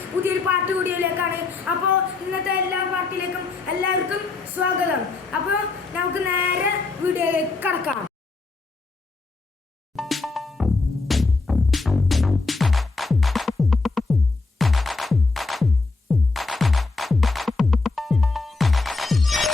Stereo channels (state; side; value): quieter; right; 3.9 dB